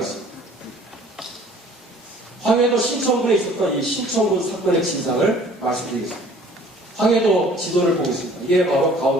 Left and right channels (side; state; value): both; normal; correlation 0.52